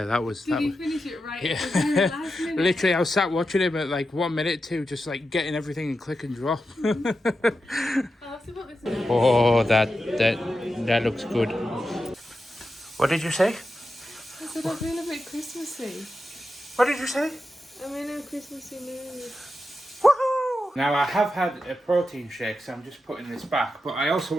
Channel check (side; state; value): both; normal; correlation 0.89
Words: Did he finish it right? Yeah. Last minute? Literally, I was sat watching him at like 1 minute, 2, just like getting everything in click and drop. I'll have to put this in. Oh, that looks good. What did you say? I said I'm feeling a bit Christmassy. What did you say? I'm in a Christmassy mood. Woohoo! Now, I have had a protein shake, so I'm just putting this back, but I also